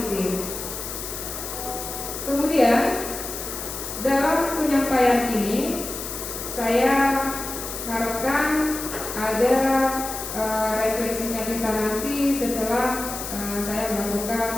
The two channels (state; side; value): noise; left; hiss, 7 dB below the sound